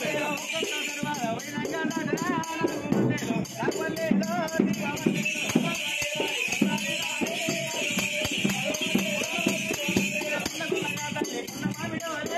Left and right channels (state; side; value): identical; both; correlation 1.00